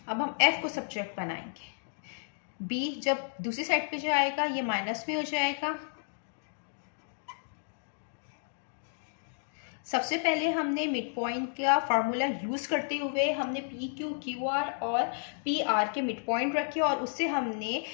अब हम f को सब्जेक्ट बनाएंगे। b जब दूसरी साइड पे जाएगा ये माइनस में हो जाएगा। सबसे पहले हमने मिड पॉइंट का फार्मूला यूज करते हुए हमने पी क्यू क्यू आर और पी आर के मिड पॉइंट रखे और उससे हमने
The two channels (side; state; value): right; silent; digital silence